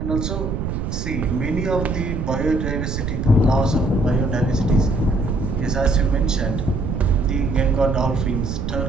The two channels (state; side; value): noise; right; rumble, 3 dB below the sound